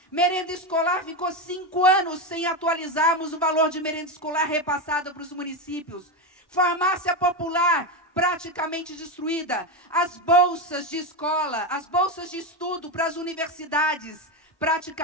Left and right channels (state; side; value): normal; both; correlation 0.13